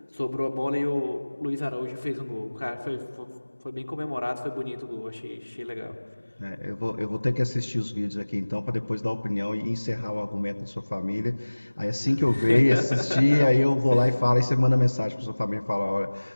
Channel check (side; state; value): both; inverted; correlation -1.00